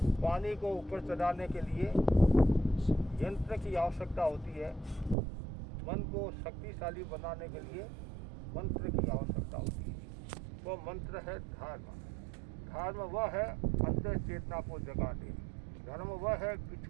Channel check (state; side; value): drops out; left; at 5.2 s